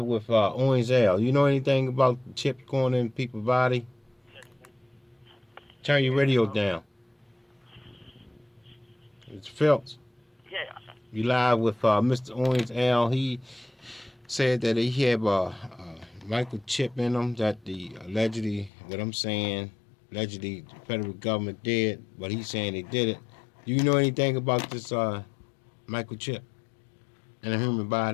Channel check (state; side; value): drops out; right; at 18.7 s